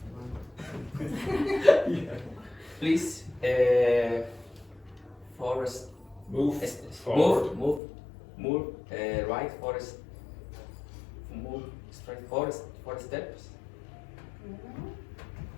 Please, forest. Move forward. Move, right, forest. Move straight, forest, four steps.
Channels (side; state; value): right; drops out; at 7.8 s